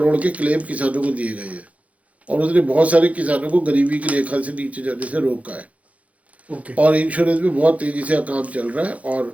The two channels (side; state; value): left; late; 0.067 ms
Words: के क्लेम किसानों को दिए गए हैं और उसने बहुत सारे किसानों को गरीबी की रेखा से नीचे जाने से रोका है। और इंश्योरेंस में बहुत तेजी से काम चल रहा है